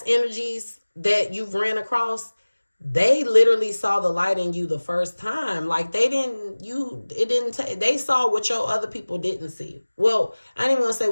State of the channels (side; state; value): both; inverted; correlation -1.00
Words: energies that you've ran across, they literally saw the light in you the first time. Like, they saw what your other people didn't see. Well, I ain't even gonna say